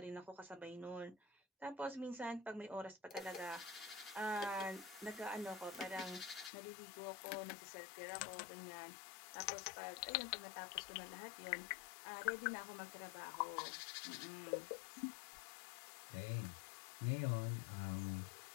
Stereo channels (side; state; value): right; drops out; at 6.5 s